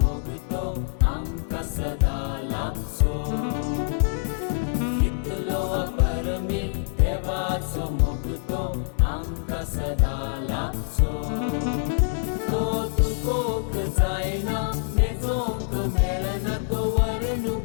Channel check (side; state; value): right; silent; digital silence